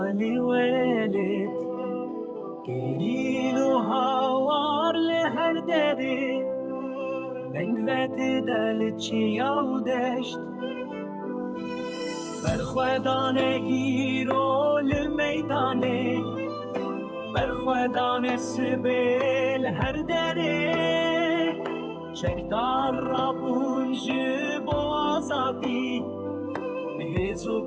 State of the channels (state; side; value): identical; both; correlation 1.00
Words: ولید گریلو هوار لهر دری بنگوت دل چیاو دشت برخوادانه گیرو لمیدانه برخوادانه سبیل هر دری شکدار را بونج بازادی مهزو